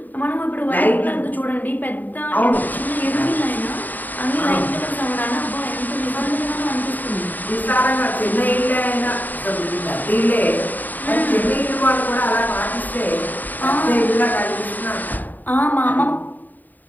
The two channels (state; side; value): late; right; 0.086 ms